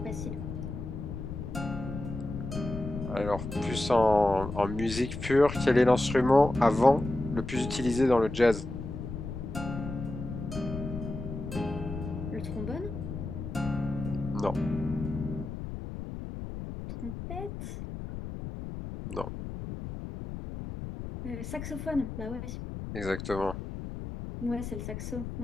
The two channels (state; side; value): noise; left; rumble, 7 dB below the sound